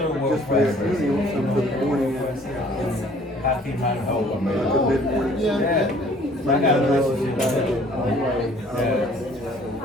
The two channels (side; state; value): both; normal; correlation 0.55